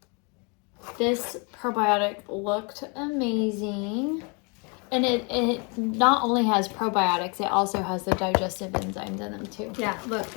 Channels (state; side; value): quieter; right; 33.5 dB